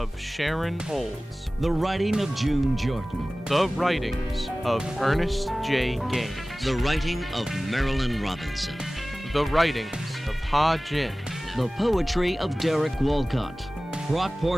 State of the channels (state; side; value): normal; both; correlation 0.98